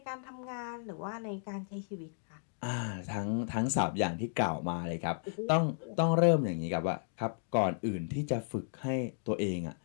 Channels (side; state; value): right; silent; digital silence